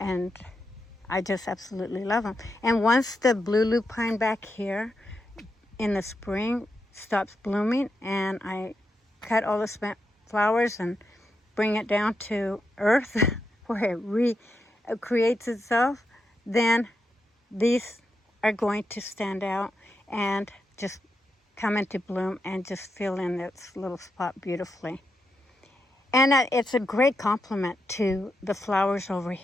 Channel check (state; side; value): normal; both; correlation 0.84